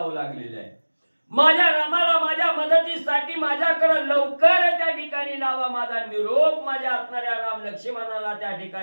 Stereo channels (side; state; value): both; inverted; correlation -1.00